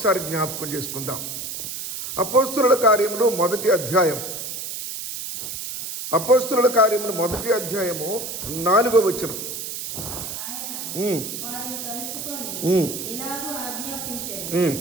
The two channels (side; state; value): right; noise; hiss, 6 dB below the sound